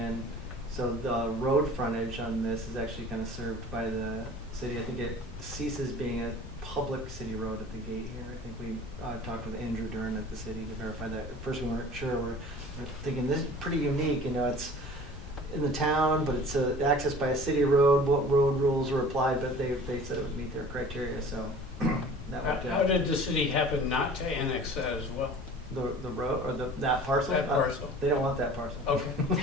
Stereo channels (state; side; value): noise; left; rumble, 13 dB below the sound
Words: so the road frontage on this is actually kind of served by the city. I think it ceases being a public city road at the gate here. I think we talked with Andrew Dern at the city to verify that. At first we weren't sure. We're thinking this is pretty unique. It's in the town, but it's accessed by a city road. What road rules were applied? But they said it would meet their criteria. So that worked How out. did the city happen not to annex that as well? The road or that parcel? That parcel. They don't want that parcel. Okay.